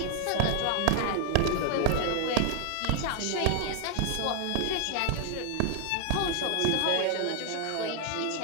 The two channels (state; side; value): different; both; correlation 0.00